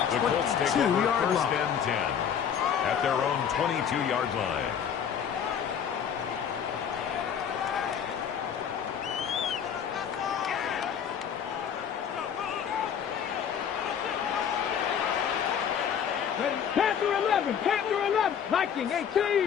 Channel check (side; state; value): right; quieter; 8.1 dB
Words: the 22-yard line. First and 10 at their own 22-yard line. Panther 11, Panther 11, Viking